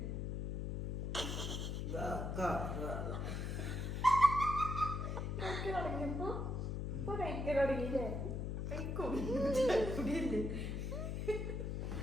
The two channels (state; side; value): noise; left; hum, 2 dB below the sound